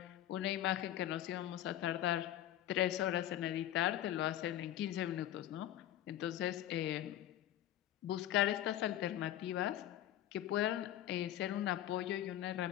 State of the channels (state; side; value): quieter; right; 12.5 dB